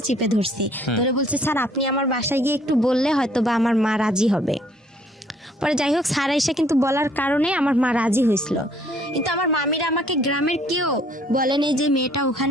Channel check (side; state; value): both; normal; correlation 0.61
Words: চিপে ধরছি, ধরে বলছে স্যার আপনি আমার বাসায় গিয়ে একটু বললে হয়তো বা আমার মা রাজি হবে। পরে যাই হোক স্যার এসে কিন্তু বলার কারণে আমার মা রাজি হয়েছিল। কিন্তু আমার মামিরা আমাকে গ্রামের কেউ বলেনি যে মেয়েটা